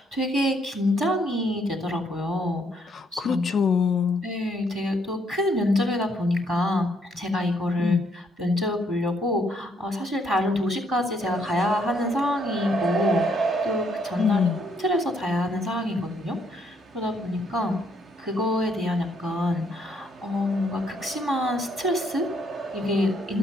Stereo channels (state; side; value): normal; both; correlation 0.70